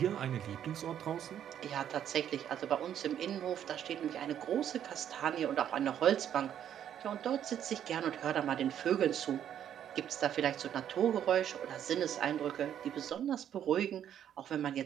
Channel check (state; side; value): quieter; left; 9.9 dB